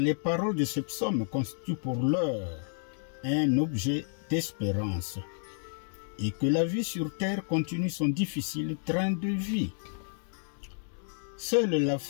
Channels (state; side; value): silent; right; digital silence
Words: paroles de ce psaume constituent pour l'heure un objet d'espérance, et que la vie sur terre continue son difficile train de vie. Seule la